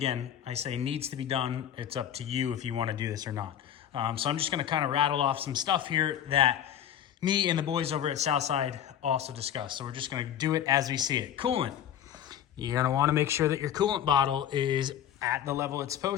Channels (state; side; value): quieter; right; 10.2 dB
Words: I say needs to be done. It's up to you if you wanna do this or not. So I'm just gonna kind of rattle off some stuff here that me and the boys over at Southside also discussed. So we're just gonna do it as we see it. Coolant. You're gonna wanna make sure that your coolant bottle is at the level it's